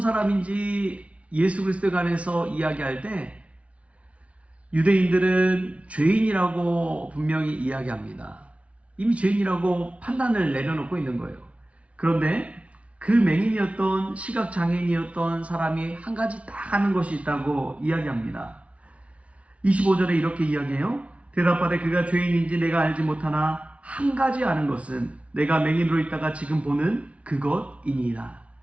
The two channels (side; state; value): left; late; 0.063 ms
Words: 예수 그리스도에 관해서 이야기할 때 유대인들은 죄인이라고 분명히 이야기합니다. 이미 죄인이라고 판단을 내려놓고 있는 거예요. 그런데 그 맹인이었던 시각장애인이었던 사람이 한 가지 딱 하는 것이 있다고 이야기합니다. 25절에 이렇게 이야기해요. 대답하되 그가 죄인인지 내가 알지 못하나 한 가지 아는 것은 내가 맹인으로 있다가 지금 보는 그것이니이다.